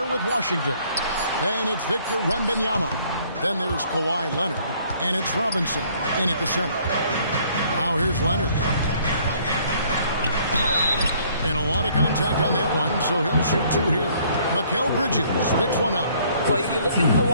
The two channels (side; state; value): both; inverted; correlation -0.61